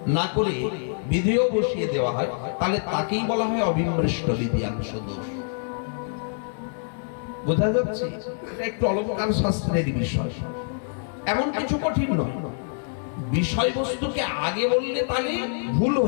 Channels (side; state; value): right; silent; 61 dB below the other